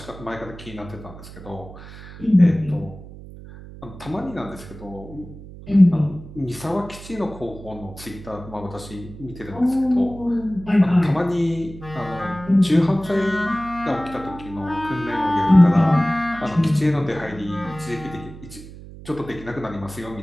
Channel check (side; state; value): right; noise; hum, 16 dB below the sound